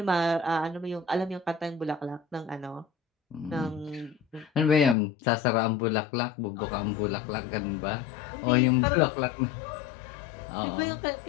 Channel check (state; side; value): drops out; right; at 5.0 s